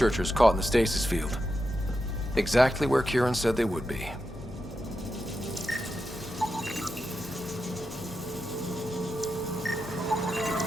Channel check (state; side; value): normal; both; correlation 0.88